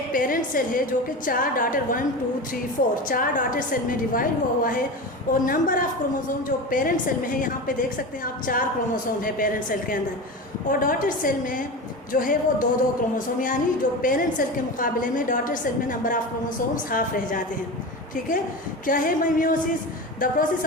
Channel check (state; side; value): normal; both; correlation 0.26